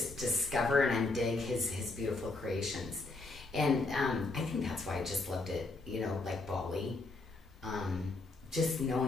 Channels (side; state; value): right; quieter; 3.3 dB